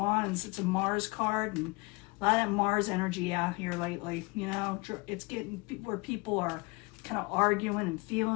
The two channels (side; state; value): right; quieter; 26.3 dB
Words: it's a Mars card, and a lot of that Mars energy out here lately. It's getting where people are kind of arguing and